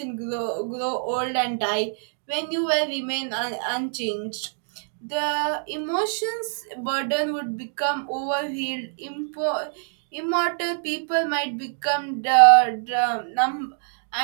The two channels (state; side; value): silent; left; digital silence